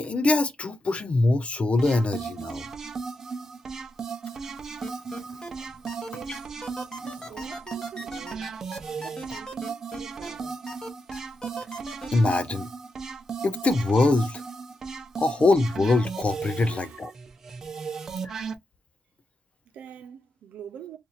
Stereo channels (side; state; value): both; normal; correlation 0.86